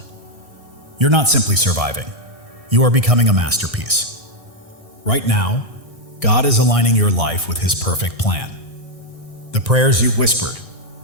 You're not simply surviving, you are becoming a masterpiece. Right now, God is aligning your life with His perfect plan. The prayers you've whispered,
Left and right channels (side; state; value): left; late; 1.6 ms